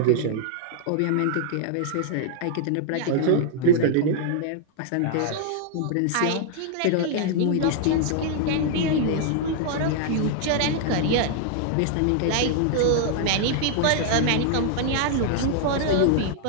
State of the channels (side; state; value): both; different; correlation -0.01